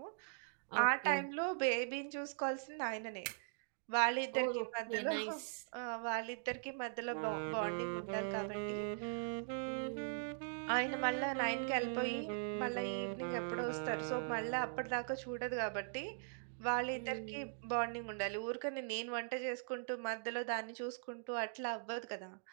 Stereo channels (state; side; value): silent; left; digital silence